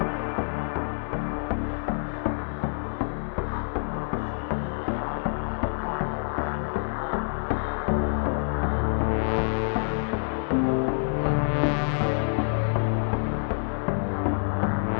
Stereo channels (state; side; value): silent; right; 60 dB below the other